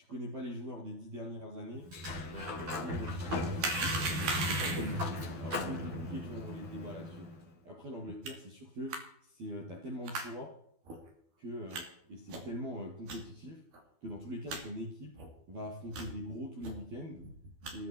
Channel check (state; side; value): late; left; 12 ms